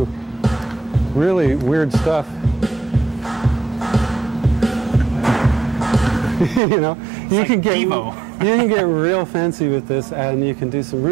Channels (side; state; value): left; drops out; at 6.6 s